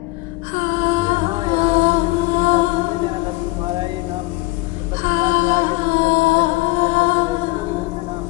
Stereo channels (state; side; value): quieter; right; 22.1 dB